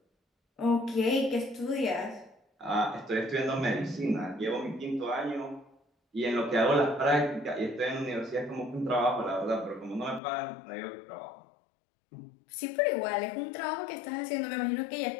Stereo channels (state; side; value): drops out; right; at 10.2 s